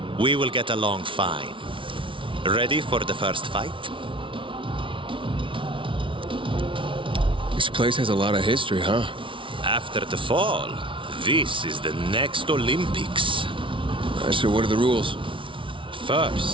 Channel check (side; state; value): left; late; 0.25 ms